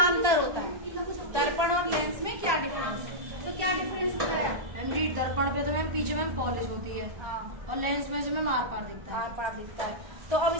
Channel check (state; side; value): late; left; 1.2 ms